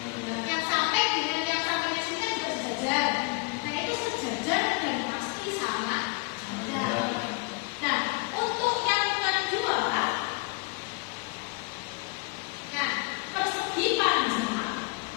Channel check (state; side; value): quieter; right; 29.0 dB